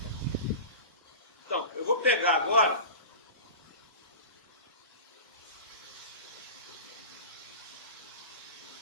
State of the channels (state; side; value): inverted; both; correlation -0.32